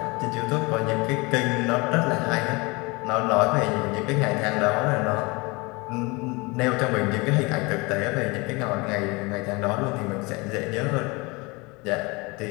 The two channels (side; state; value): right; quieter; 26.0 dB